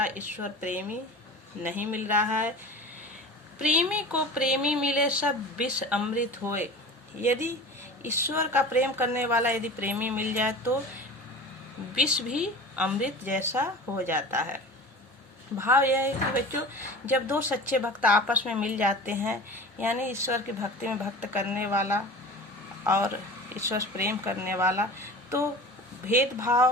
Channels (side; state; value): both; normal; correlation 0.36